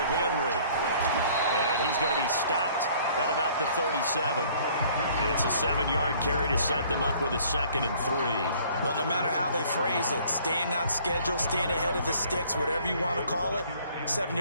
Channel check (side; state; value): both; inverted; correlation -0.56